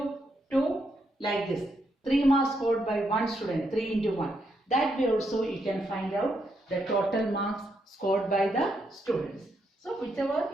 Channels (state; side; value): normal; both; correlation 0.79